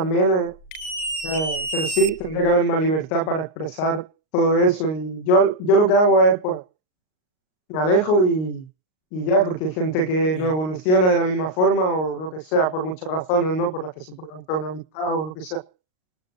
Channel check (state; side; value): late; right; 38 ms